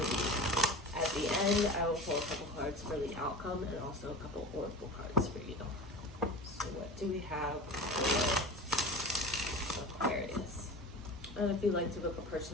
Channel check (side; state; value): both; normal; correlation 0.32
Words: At the end, I will pull a couple cards for the outcome and also a couple oracle cards for you. So what do we have for Aquarius? And if you'd like to book a